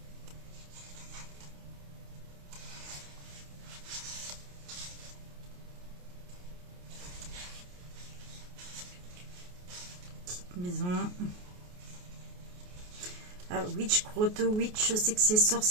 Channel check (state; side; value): late; left; 28 ms